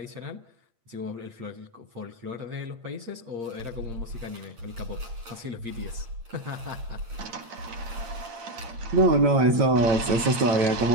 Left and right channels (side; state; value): left; late; 8.7 ms